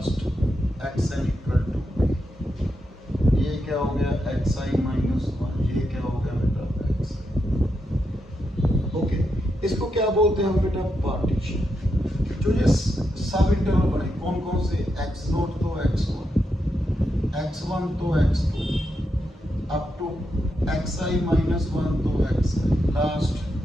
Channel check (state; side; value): normal; both; correlation 0.84